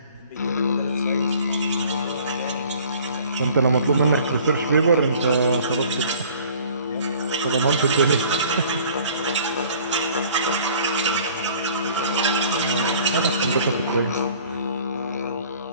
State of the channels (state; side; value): inverted; both; correlation -0.51